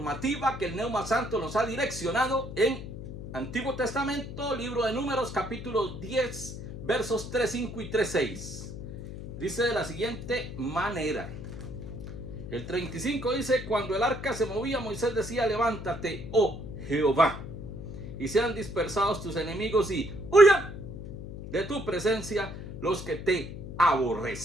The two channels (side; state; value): left; noise; hum, 10 dB below the sound